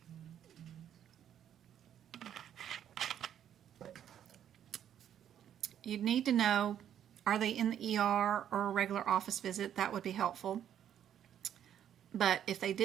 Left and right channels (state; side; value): quieter; left; 9.9 dB